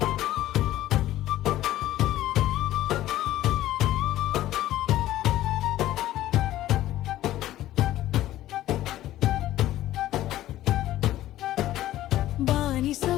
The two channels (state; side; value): quieter; right; 14.3 dB